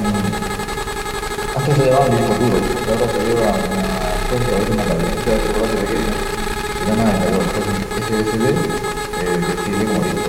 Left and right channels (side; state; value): both; identical; correlation 1.00